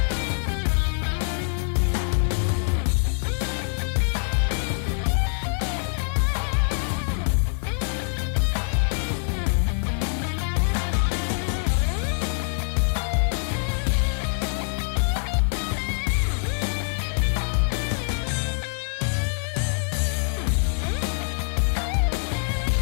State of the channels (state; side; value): silent; right; digital silence